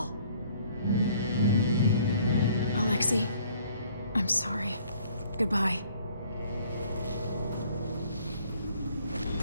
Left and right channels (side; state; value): both; inverted; correlation -0.59